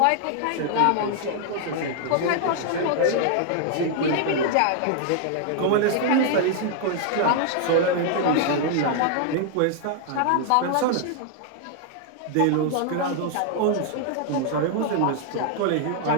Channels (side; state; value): both; different; correlation -0.01